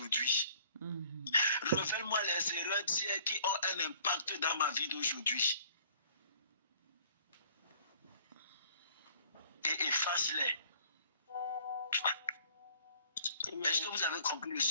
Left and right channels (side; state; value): both; inverted; correlation -0.55